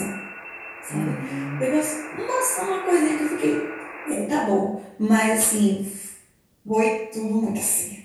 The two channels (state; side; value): identical; both; correlation 1.00